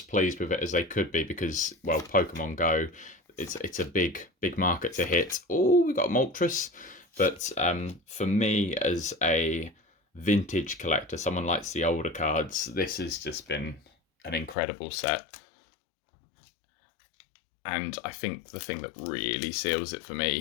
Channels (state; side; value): drops out; right; at 14.6 s